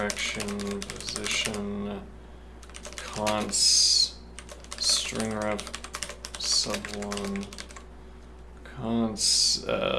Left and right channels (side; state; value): both; identical; correlation 1.00